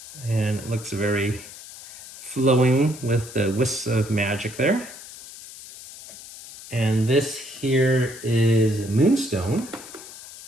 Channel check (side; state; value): left; noise; hiss, 16 dB below the sound